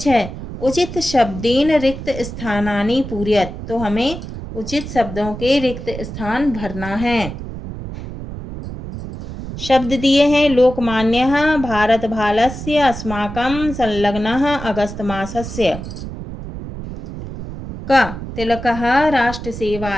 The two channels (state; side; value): noise; right; rumble, 9 dB below the sound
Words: उचित शब्देन रिक्त स्थानानि पूरयत। तो हमें उचित शब्दों के रिक्त स्थान भरना है। शब्द दिए हैं, लोकमान्यः भारत भालस्य अस्माकं संलग्नः अगस्त मासस्य। क, तिलकः